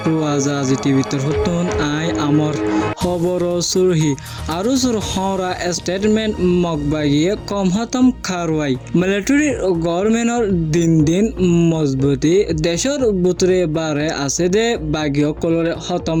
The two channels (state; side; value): identical; both; correlation 1.00